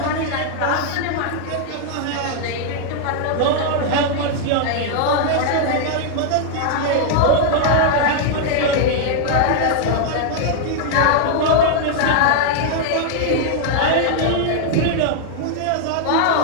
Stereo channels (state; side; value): different; both; correlation 0.00